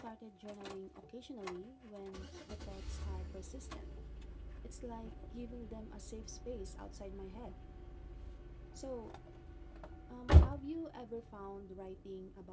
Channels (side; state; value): both; identical; correlation 1.00